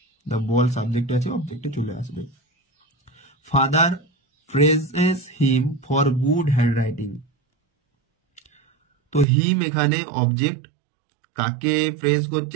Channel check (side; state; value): left; drops out; at 9.2 s